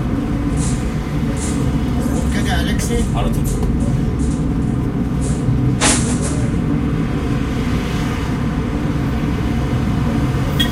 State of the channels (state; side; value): identical; both; correlation 1.00